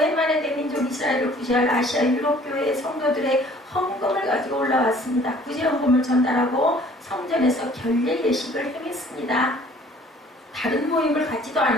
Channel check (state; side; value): normal; both; correlation 0.54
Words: 만에 대민족 이스라엘을 구제할 아시아 유럽 교회의 성도들의 헌금을 가지고 올라왔습니다. 구제 헌금을 전달하고 성전에서 결례 예식을 행했습니다. 다른 모임을 갖지도